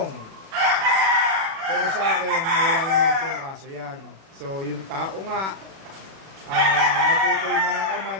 Pero sa akin, wala naman po yung kaso yan. So, yung tao nga, maputol man ng kamay,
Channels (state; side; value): late; left; 36 ms